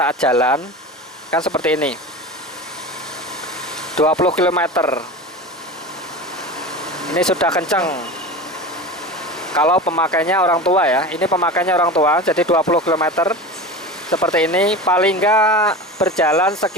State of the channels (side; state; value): both; normal; correlation 0.29